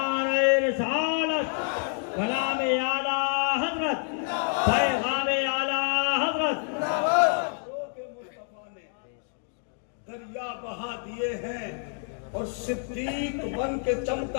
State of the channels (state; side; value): silent; right; 55 dB below the other